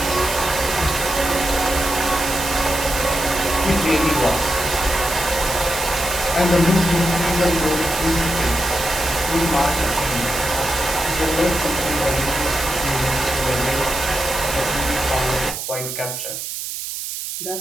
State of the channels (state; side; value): noise; right; hiss, 6 dB below the sound